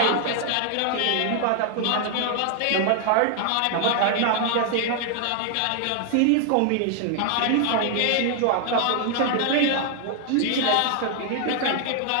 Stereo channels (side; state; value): both; different; correlation 0.00